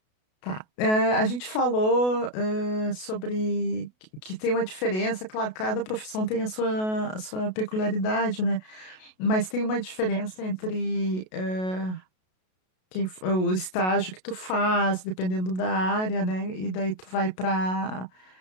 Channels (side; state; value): right; late; 33 ms